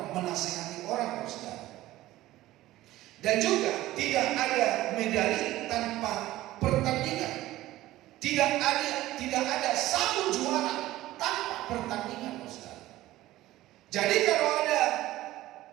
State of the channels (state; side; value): quieter; left; 16.0 dB